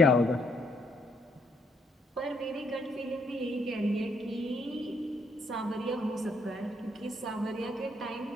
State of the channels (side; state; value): both; normal; correlation 0.72